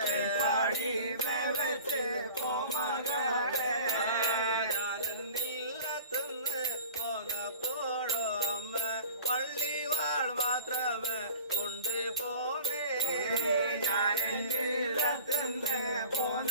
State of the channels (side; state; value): both; inverted; correlation -0.43